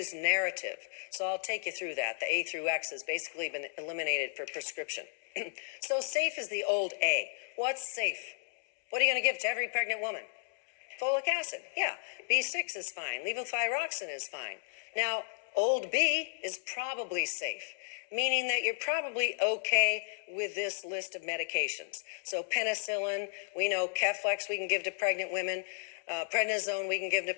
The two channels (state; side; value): silent; right; digital silence